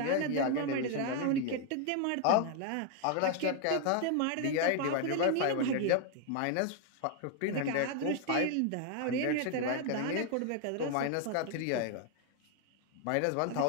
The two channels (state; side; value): different; both; correlation 0.00